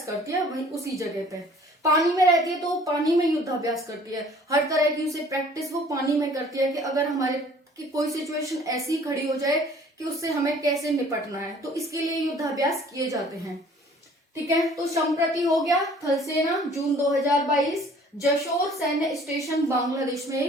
करती है, वही उसी जगह पे। पानी में रहती है तो पानी में युद्धाभ्यास करती है, हर तरह की उसे प्रैक्टिस वो पानी में करती है कि अगर हमारे की कोई सिचुएशन ऐसी खड़ी हो जाए कि उससे हमें कैसे निपटना है, तो इसके लिए युद्धाभ्यास किए जाते हैं। ठीक है, तो संप्रति हो गया थल सेना जून 2022 जशोर सैन्य स्टेशन बांग्लादेश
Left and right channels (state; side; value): normal; both; correlation 0.53